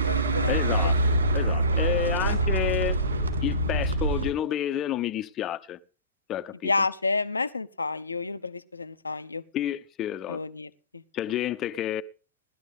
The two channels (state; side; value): inverted; both; correlation -0.36